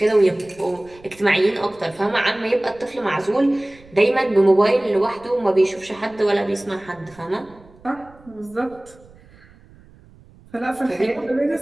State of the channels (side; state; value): right; noise; rumble, 25 dB below the sound